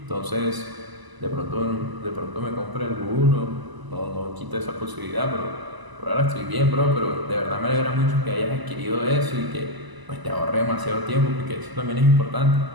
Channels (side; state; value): left; late; 1.0 ms